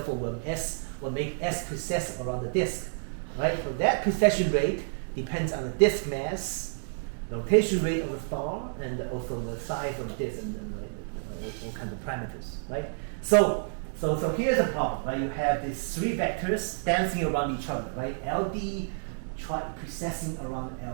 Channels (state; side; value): silent; left; digital silence